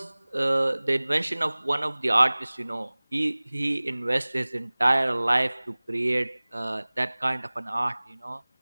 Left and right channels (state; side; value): inverted; both; correlation -1.00